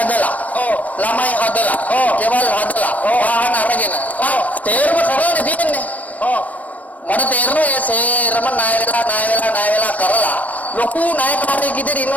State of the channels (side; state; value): right; late; 0.071 ms